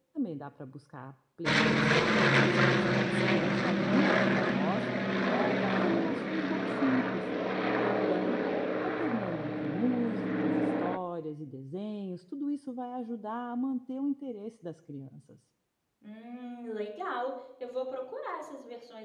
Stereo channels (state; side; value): identical; both; correlation 1.00